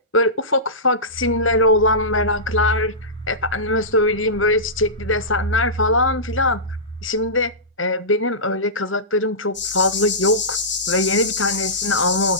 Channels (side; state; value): both; normal; correlation -0.18